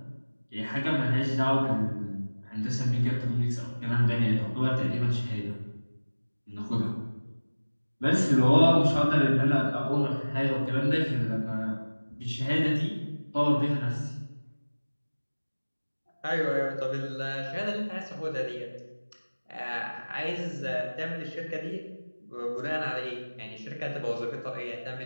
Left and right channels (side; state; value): both; inverted; correlation -1.00